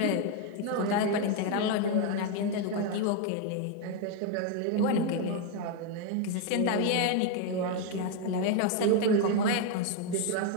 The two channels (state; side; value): different; both; correlation 0.01